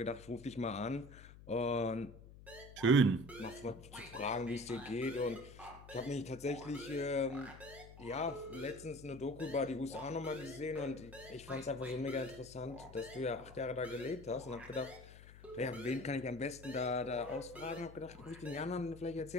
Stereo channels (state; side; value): noise; left; hum, 17 dB below the sound